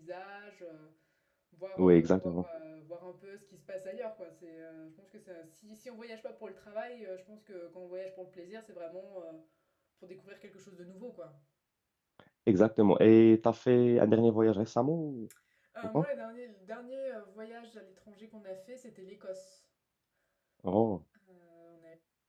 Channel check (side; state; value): both; identical; correlation 1.00